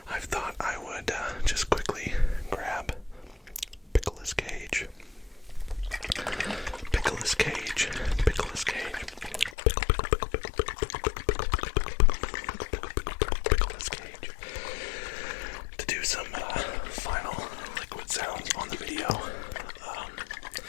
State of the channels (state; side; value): drops out; right; at 9.6 s